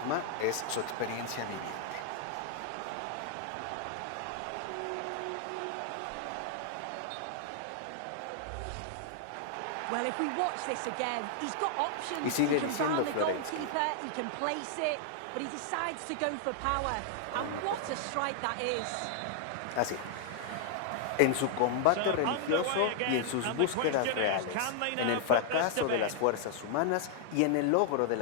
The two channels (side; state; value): both; different; correlation 0.00